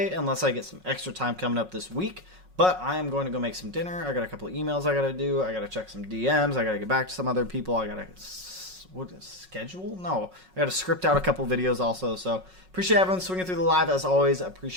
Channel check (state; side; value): late; left; 5.4 ms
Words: unless I get some extra time coming up this week. But I am going to go make some dinner. I got a couple of emails I got to do. I got to check some DMs. I got to get back to some other people. I got to schedule? No. I got to script out a couple videos also. So appreciate everyone swinging through the live as always.